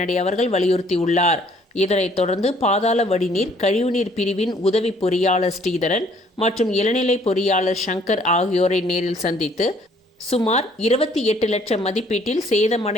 அவர்கள் வலியுறுத்தியுள்ளார். இதனைத் தொடர்ந்து பாதாள வடிநீர் கழிவுநீர் பிரிவின் உதவி பொறியாளர் ஸ்ரீதரன் மற்றும் இளநிலை பொறியாளர் சங்கர் ஆகியோரை நேரில் சந்தித்து சுமார் 28 லட்சம் மதிப்பீட்டில்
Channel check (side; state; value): both; normal; correlation 0.61